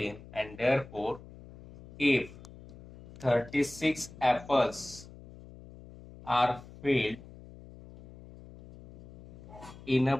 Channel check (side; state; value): left; noise; hum, 18 dB below the sound